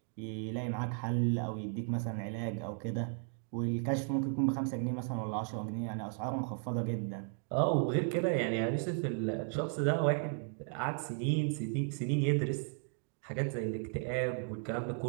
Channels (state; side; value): silent; left; 54 dB below the other